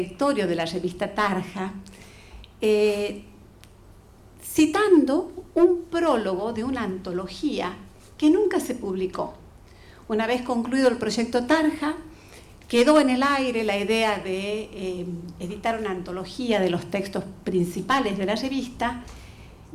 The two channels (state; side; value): identical; both; correlation 1.00